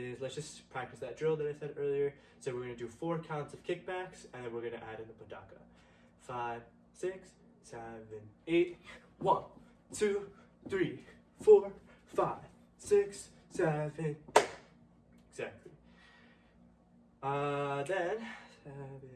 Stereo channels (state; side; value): identical; both; correlation 1.00